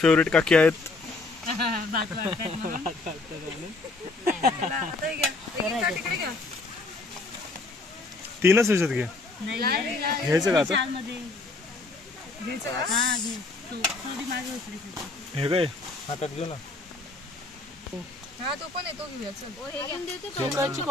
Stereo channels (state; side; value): quieter; right; 3.4 dB